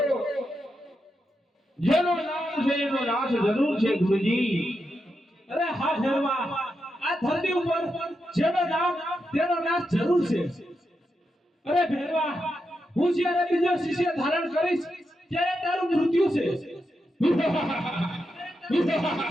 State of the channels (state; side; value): normal; both; correlation 0.86